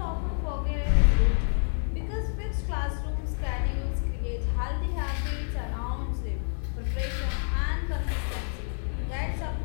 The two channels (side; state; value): right; silent; digital silence